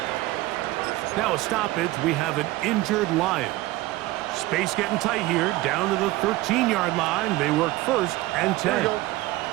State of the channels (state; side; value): quieter; left; 18.4 dB